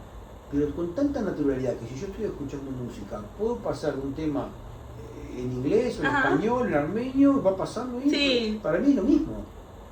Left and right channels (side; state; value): both; identical; correlation 1.00